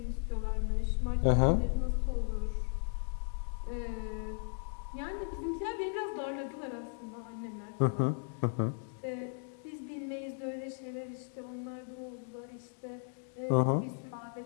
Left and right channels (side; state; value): right; silent; 54 dB below the other